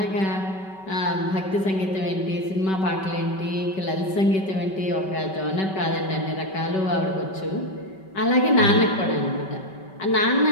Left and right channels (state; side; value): late; right; 5.2 ms